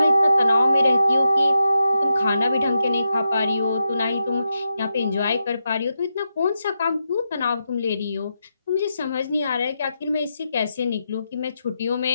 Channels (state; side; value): inverted; both; correlation -0.86